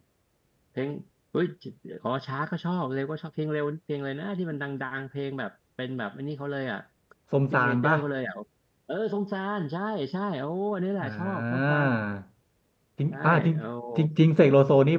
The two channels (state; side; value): identical; both; correlation 1.00